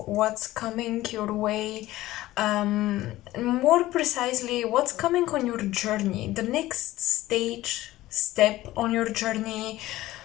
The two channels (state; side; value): quieter; right; 16.4 dB